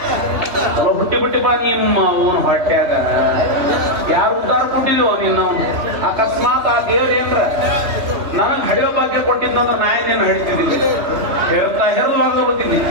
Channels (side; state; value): left; late; 2.6 ms